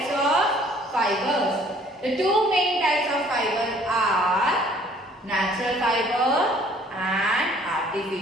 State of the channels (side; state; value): both; normal; correlation 0.57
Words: of fibers. The two main types of fiber are natural fiber and